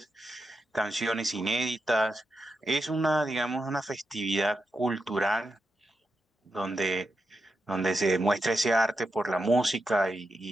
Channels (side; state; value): both; normal; correlation 0.87